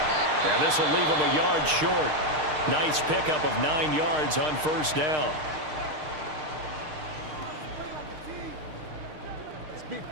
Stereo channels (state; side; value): late; left; 6.5 ms